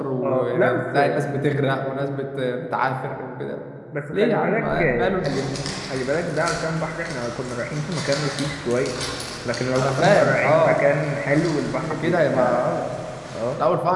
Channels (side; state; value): both; identical; correlation 1.00